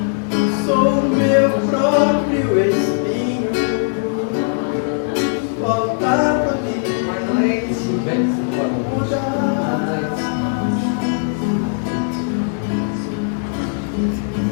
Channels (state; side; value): silent; right; 60 dB below the other